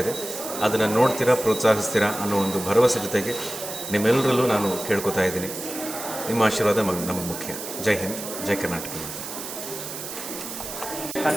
ಇದೆ. ಅದನ್ನು ನೋಡ್ತೀರಾ, ಪ್ರೋತ್ಸಾಹಿಸ್ತೀರಾ ಅನ್ನೋ ಒಂದು ಭರವಸೆ ಜೊತೆಗೆ ನಿಮ್ಮೆಲ್ಲರಲ್ಲೂ ನಾನು ಕೇಳ್ಕೊತಾ ಇದ್ದೀನಿ. ನಿಮ್ಮ ಆಶೀರ್ವಾದ ನಮಗೆ ಮುಖ್ಯ. ಜೈ ಹಿಂದ್, ಜೈ ಕರ್ನಾಟಕ.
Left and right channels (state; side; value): noise; right; hiss, 8 dB below the sound